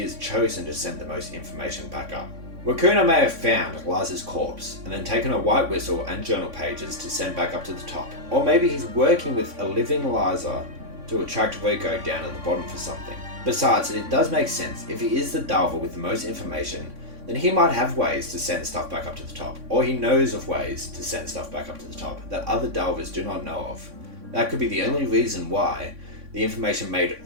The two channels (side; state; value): left; late; 3.6 ms